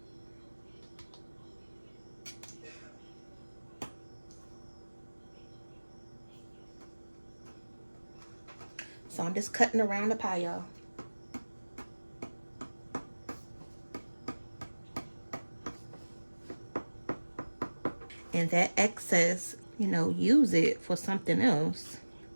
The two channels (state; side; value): inverted; both; correlation -1.00